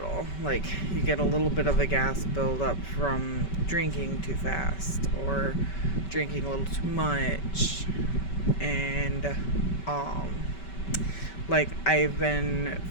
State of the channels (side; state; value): right; late; 5.2 ms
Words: Like, you get a little bit of a gas buildup from drinking too fast or drinking a little too much. And, like, I've been